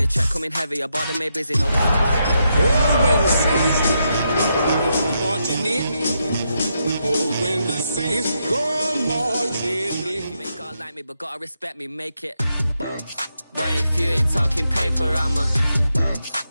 check coming heavy. I bought them made busy. No. When the saints marching in. When the saints go marching in. You ain't gotta like me, but gotta respect me. Make it. Boy, if you ain't talking paper,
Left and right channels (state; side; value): inverted; both; correlation -0.82